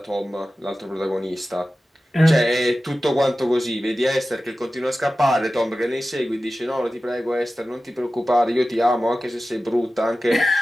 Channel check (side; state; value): both; normal; correlation 0.95